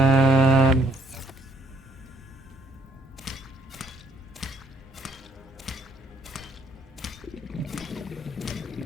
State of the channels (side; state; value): both; normal; correlation 0.66